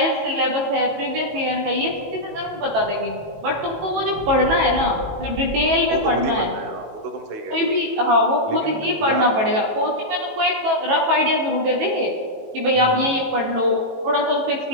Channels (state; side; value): late; left; 18 ms